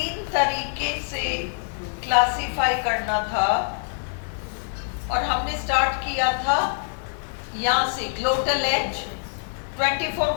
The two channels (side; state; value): right; silent; digital silence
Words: तरीके से क्लासिफाई करना था और हमने स्टार्ट किया था यहाँ से ग्लोटल एज 24